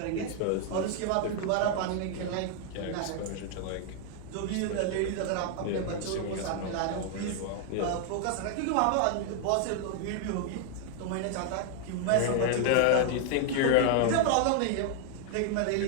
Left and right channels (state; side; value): different; both; correlation 0.00